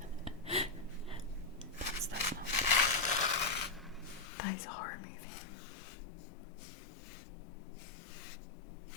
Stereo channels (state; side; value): drops out; right; at 4.2 s